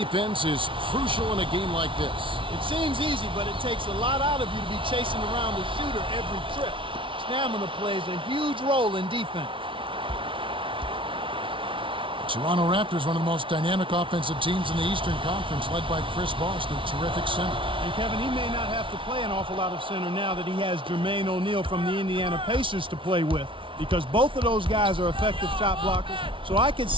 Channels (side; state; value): left; late; 0.25 ms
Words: is crucial in a game like this. It seems easy, but it takes a lot out of you to be chasing around the shooter every trip. Stamina plays a huge role in defense. The Toronto Raptors, one of the most dynamic offensive teams in the Eastern Conference, led by Chris Bosh, their terrific center. And Kevin, he may not have to play an awful lot of center now that he has Jermaine O'Neal from the Indiana Pacers to play with. because both of those guys are effective shot blockers. So I could